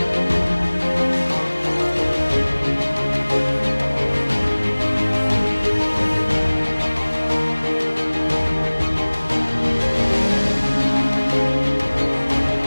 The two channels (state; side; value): inverted; both; correlation -1.00